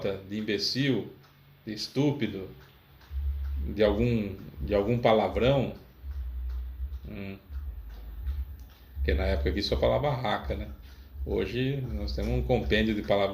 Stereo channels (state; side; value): identical; both; correlation 1.00